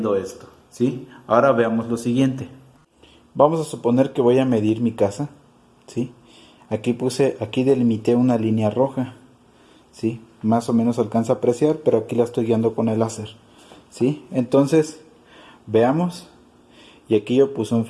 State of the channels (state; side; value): identical; both; correlation 1.00